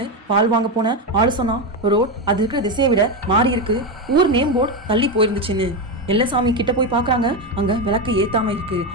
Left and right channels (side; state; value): both; normal; correlation 0.12